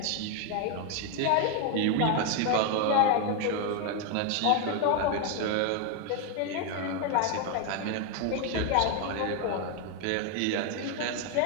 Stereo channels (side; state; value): both; different; correlation 0.01